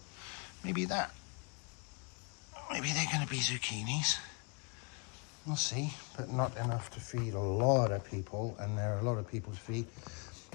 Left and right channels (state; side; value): quieter; right; 34.4 dB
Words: Maybe they're going to be zucchinis. We'll see, but not enough to feed a lot of people, and there are a lot of people to feed.